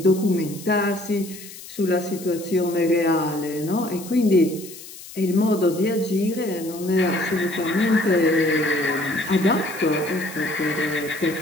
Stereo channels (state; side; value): noise; left; hiss, 15 dB below the sound